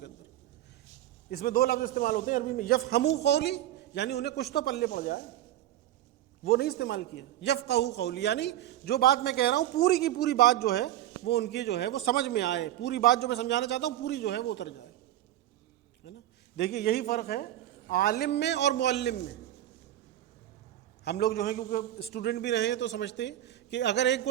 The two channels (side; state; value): left; quieter; 13.1 dB